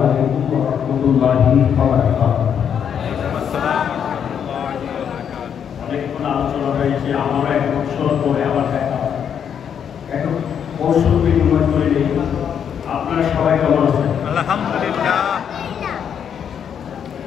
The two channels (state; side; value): quieter; right; 8.1 dB